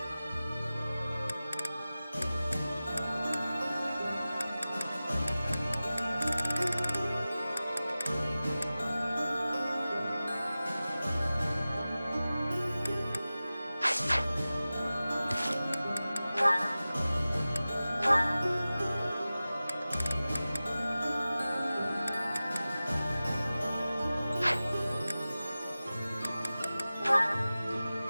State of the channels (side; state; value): both; inverted; correlation -0.96